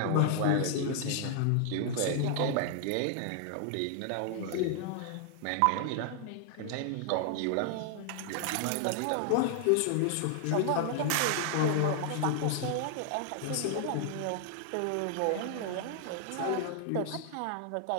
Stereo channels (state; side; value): different; both; correlation 0.00